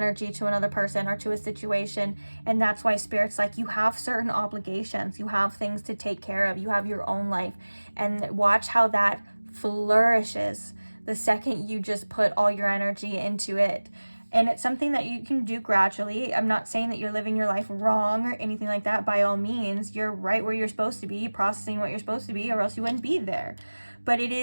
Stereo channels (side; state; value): both; inverted; correlation -1.00